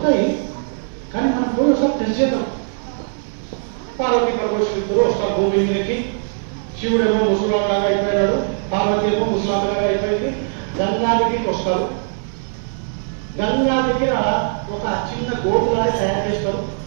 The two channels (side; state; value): left; silent; digital silence